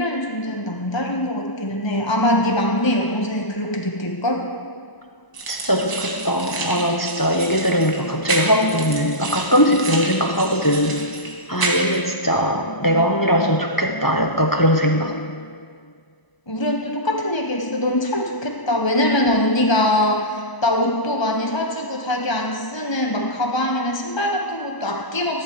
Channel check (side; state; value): right; late; 1.0 ms